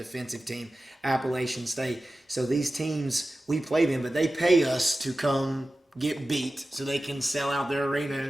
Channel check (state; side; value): normal; both; correlation 0.95